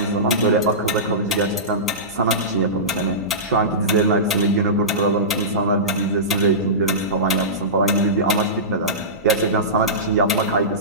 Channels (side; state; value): both; normal; correlation -0.19